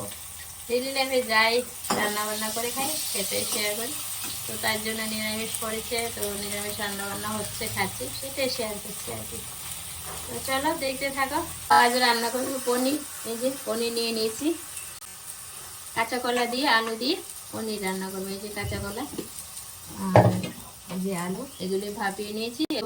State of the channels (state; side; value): identical; both; correlation 1.00